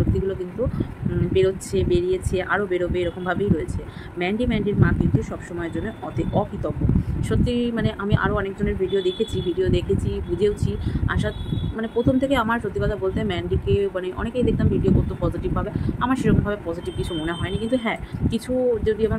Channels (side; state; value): both; identical; correlation 1.00